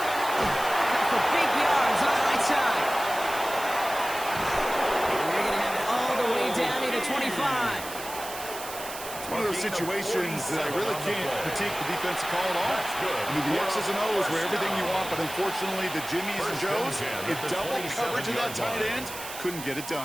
Big yards on the right side. And they're going to have it all the way down to the 25. It's one of those situations that I really can't critique the defensive call at all. I mean, the X's and O's were everything you want, but unfortunately, the Jimmies and Joes, in double coverage of that tight end, couldn't get it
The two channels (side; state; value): right; noise; hiss, 11 dB below the sound